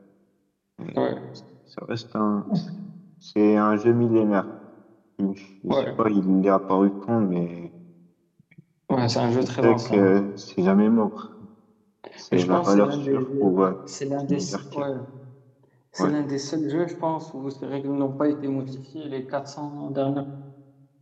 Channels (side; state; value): both; identical; correlation 1.00